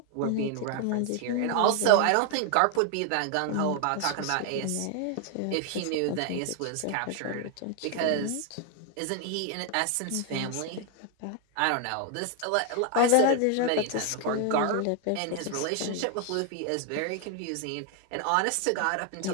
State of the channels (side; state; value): both; different; correlation 0.01